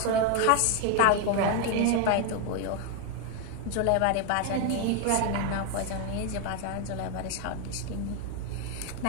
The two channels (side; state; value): both; different; correlation 0.01